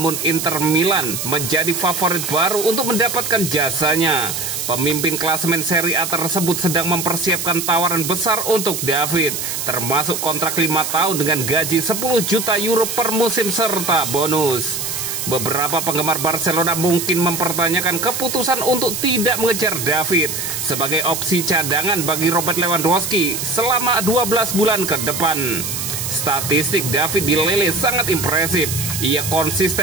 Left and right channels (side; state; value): right; noise; hiss, 4 dB below the sound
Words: Inter Milan menjadi favorit baru untuk mendapatkan jasanya. Pemimpin klasemen Serie A tersebut sedang mempersiapkan tawaran besar untuk David, termasuk kontrak 5 tahun dengan gaji 10 juta euro per musim serta bonus. Beberapa penggemar Barcelona mungkin mempertanyakan keputusan untuk tidak mengejar David sebagai opsi cadangan bagi Robert Lewandowski selama 12 bulan ke depan. Statistik David di Lille sangat impresif. Ia